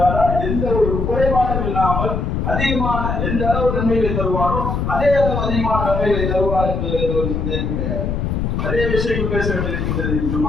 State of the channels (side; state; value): left; noise; rumble, 1 dB below the sound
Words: எந்த ஒரு குறைபாடும் இல்லாமல் அதிகமான எந்த அளவு நன்மைகளை தருவாரோ அதே அளவு அதிகமான நன்மைகளை தருவார் என்பது ஒரு சந்தேகம் கிடையாது. அதே விஷயம் பேச வேண்டியிருக்கின்றது.